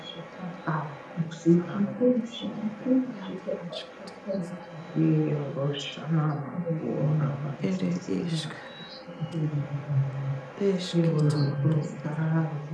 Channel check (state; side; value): identical; both; correlation 1.00